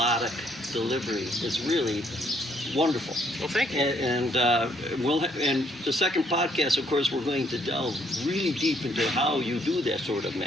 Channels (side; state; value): both; normal; correlation 0.68